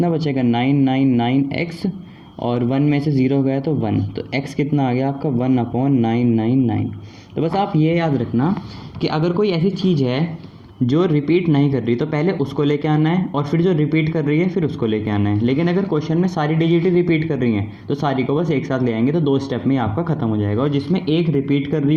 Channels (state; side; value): identical; both; correlation 1.00